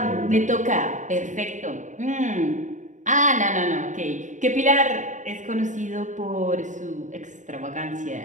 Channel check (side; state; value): left; late; 0.36 ms